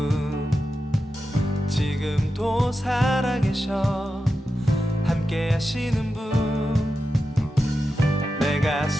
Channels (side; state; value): both; normal; correlation 0.91